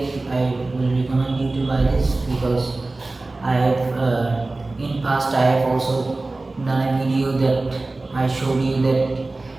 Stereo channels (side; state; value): left; quieter; 3.1 dB